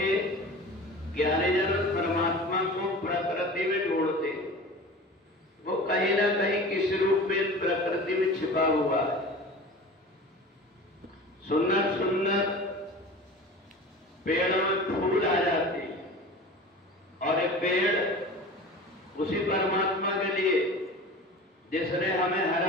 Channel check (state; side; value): normal; both; correlation 0.37